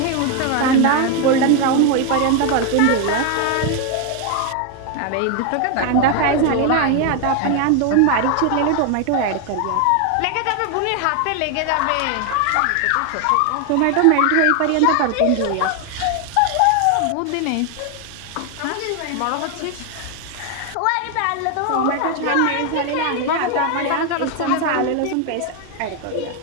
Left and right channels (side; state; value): both; different; correlation 0.01